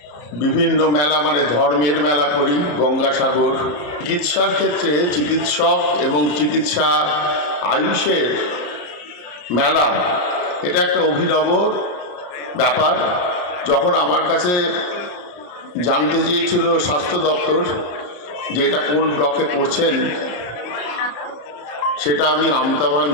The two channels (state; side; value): late; right; 34 ms